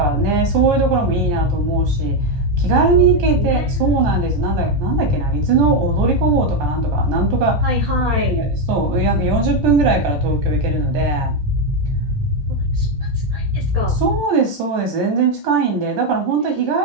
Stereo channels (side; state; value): left; late; 14 ms